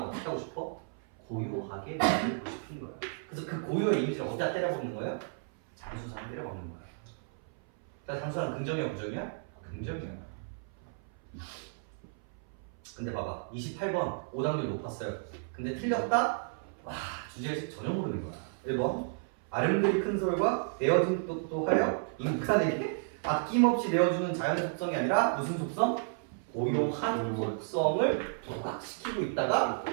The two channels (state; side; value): silent; left; 56 dB below the other